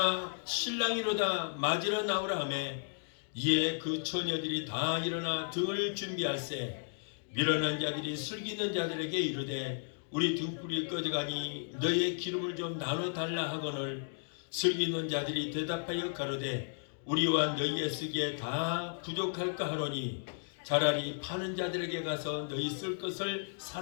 신랑이로다 맞으러 나오라 하매 이에 그 처녀들이 다 일어나 등을 준비할세. 미련한 자들이 슬기 있는 자들에게 이르되 우리 등불이 꺼져가니 너의 기름을 좀 나눠 달라 하거늘 슬기 있는 자들이 대답하여 가로되 우리와 너희의 쓰기에 다 부족할까 하노니 차라리 파는 자들에게 가서 너희 쓸 것을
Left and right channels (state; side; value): silent; right; digital silence